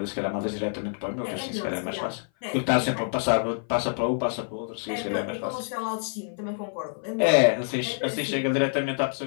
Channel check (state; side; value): silent; right; 57 dB below the other